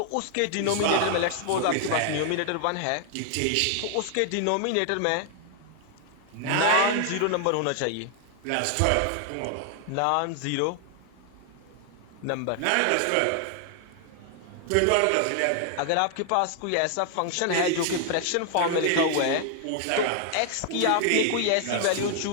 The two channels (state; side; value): different; both; correlation 0.00